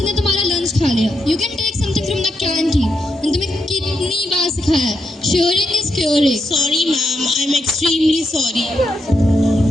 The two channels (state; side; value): normal; both; correlation 0.82